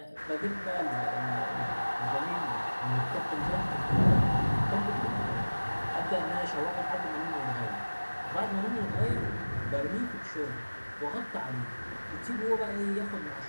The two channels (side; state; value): both; inverted; correlation -1.00